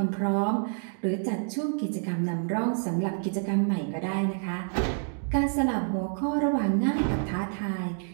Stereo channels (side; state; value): left; silent; 59 dB below the other